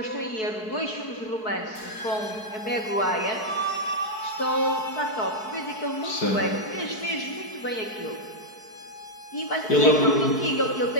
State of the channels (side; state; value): right; late; 4.6 ms